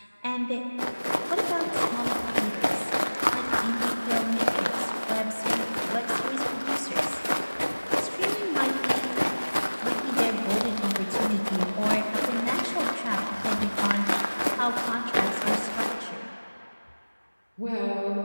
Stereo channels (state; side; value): inverted; both; correlation -1.00